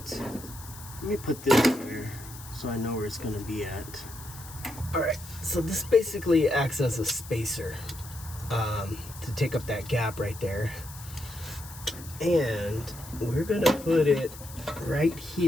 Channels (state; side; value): noise; left; hiss, 16 dB below the sound